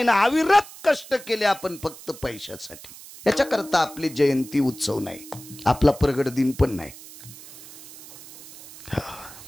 ना, अविरत कष्ट केले आपण फक्त पैशासाठी. याच्याकरता आपली जयंती उत्सव नाही, आपला प्रगट दिन पण नाही.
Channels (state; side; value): noise; right; hiss, 17 dB below the sound